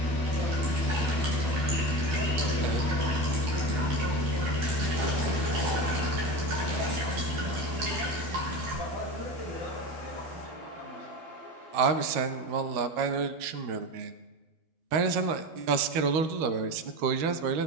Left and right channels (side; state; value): left; late; 13 ms